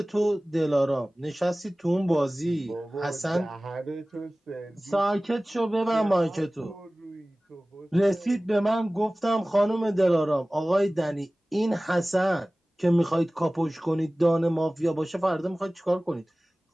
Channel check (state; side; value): normal; both; correlation 0.98